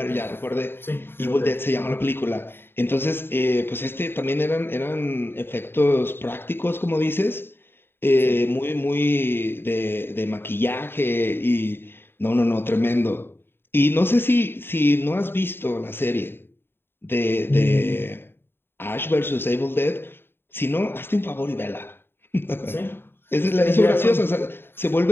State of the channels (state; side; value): late; right; 0.11 ms